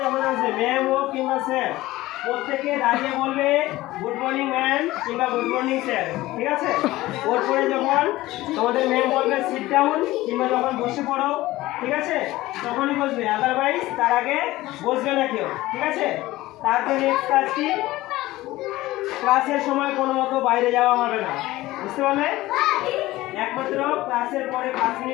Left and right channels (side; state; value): right; quieter; 17.6 dB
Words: যখন আসবে ম্যাম হোক কিংবা স্যার, প্রত্যেকে দাঁড়িয়ে বলবে গুড মর্নিং ম্যাম কিংবা গুড মর্নিং স্যার, ঠিক আছে? ওর পরে যখন তোমাদের ম্যাম বলবে সিট ডাউন কিংবা যখন বসে পড়ো, ঠিক আছে, তখনই বসবে, আদারওয়াইজ তার আগে বসবে না কেউ, ঠিক আছে? তারপরে নেক্সট কাজ কি, ক্লাসের সময় কোনো মতো বাইরে যাওয়া হবে না, বুঝতে পারলে? একমাত্র ক্লাসের পরে 5